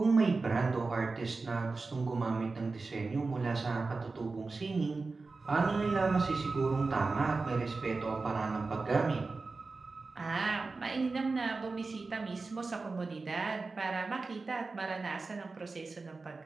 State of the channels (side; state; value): left; quieter; 3.9 dB